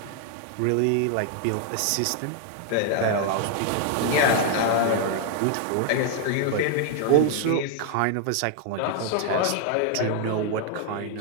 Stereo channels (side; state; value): both; different; correlation 0.00